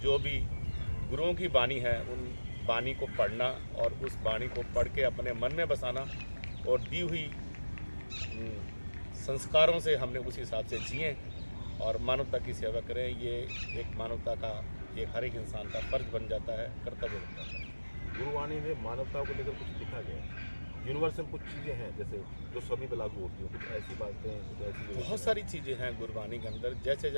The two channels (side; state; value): both; inverted; correlation -1.00